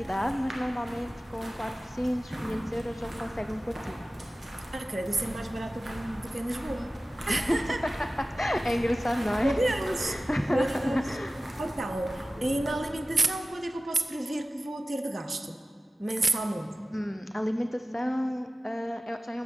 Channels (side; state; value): both; normal; correlation 0.96